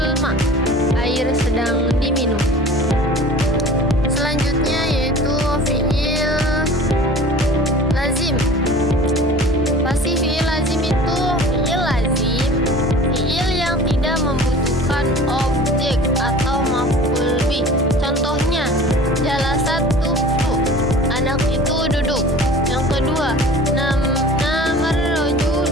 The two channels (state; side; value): normal; both; correlation 0.42